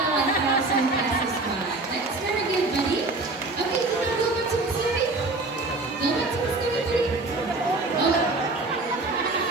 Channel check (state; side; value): quieter; left; 3.2 dB